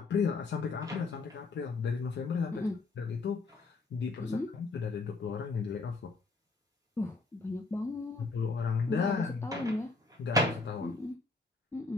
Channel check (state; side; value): quieter; right; 3.8 dB